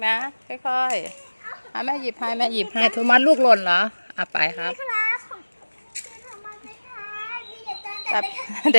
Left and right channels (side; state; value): both; inverted; correlation -1.00